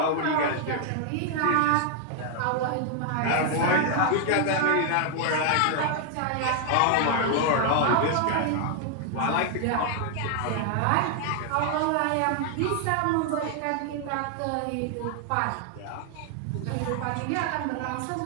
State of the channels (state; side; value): different; both; correlation 0.00